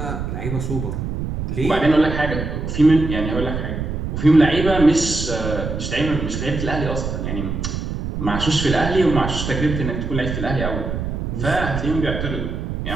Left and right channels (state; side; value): noise; right; rumble, 4 dB below the sound